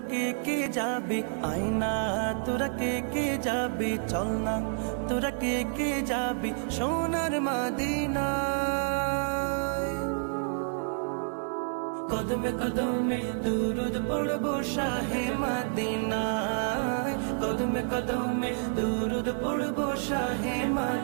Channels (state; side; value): silent; left; 55 dB below the other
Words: কে যাবি আয়না, তোরা কে যাবি চল না, তোরা কে যাবি সোনার মদিনায়। কদমে কদমে দুরুদ পড়বো শাহে মদিনায়, কদমে কদমে দুরুদ পড়বো শাহে